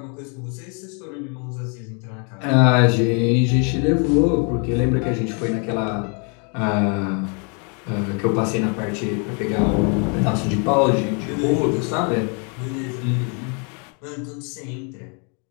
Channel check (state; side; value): quieter; right; 36.9 dB